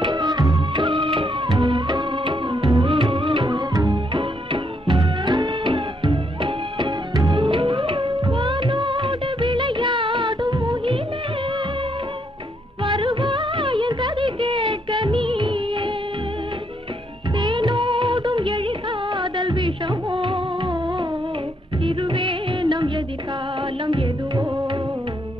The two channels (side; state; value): both; normal; correlation 0.74